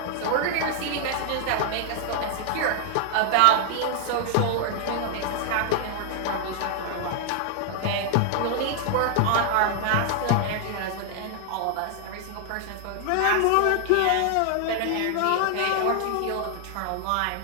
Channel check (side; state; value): both; different; correlation 0.00